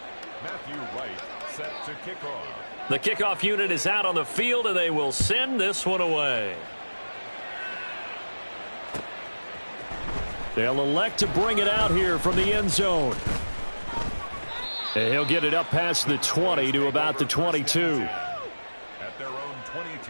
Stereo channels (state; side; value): inverted; both; correlation -1.00